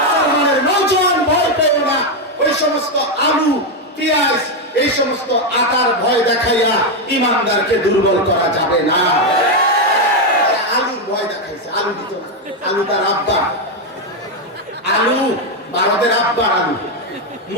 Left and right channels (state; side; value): normal; both; correlation 0.05